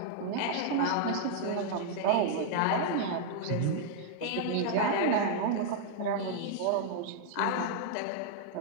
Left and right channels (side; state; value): both; different; correlation 0.00